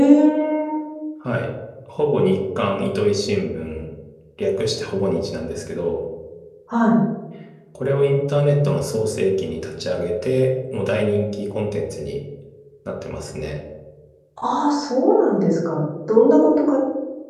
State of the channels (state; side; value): identical; both; correlation 1.00